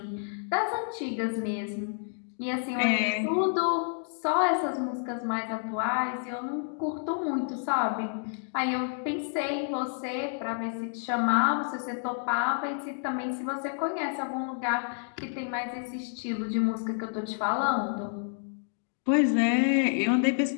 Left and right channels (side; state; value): right; silent; digital silence